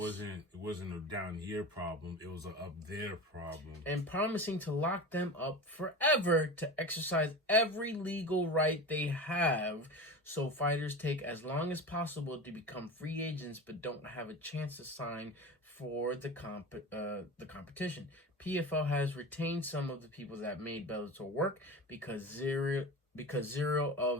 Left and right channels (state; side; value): normal; both; correlation 0.29